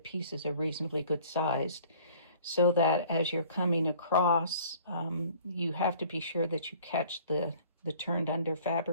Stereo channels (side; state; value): both; inverted; correlation -0.51